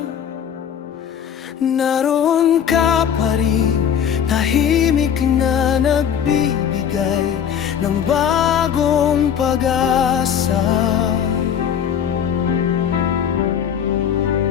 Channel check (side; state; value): right; quieter; 8.5 dB